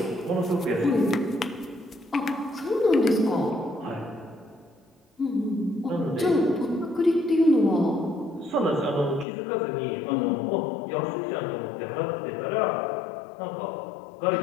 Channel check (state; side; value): drops out; right; at 9.2 s